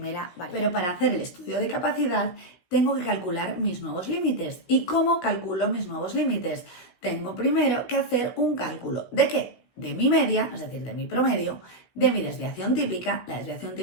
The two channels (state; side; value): late; right; 16 ms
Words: variable. Pero para hacer el estudio de capacidad tengo que calcular mis nuevos límites. ¿Y cómo calculo mis nuevos límites? Tengo primero que hacer un cálculo. ¿De qué? De mi media, es decir, de mi promedio, de mi desviación típica, la desviación